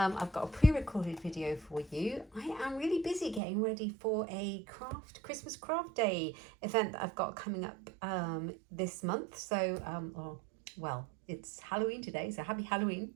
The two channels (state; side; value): drops out; left; at 3.4 s